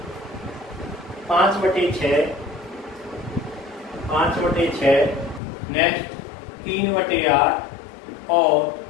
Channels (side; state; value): right; drops out; at 5.4 s